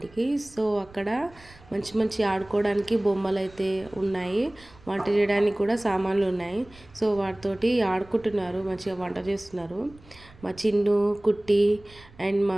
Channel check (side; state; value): right; noise; rumble, 24 dB below the sound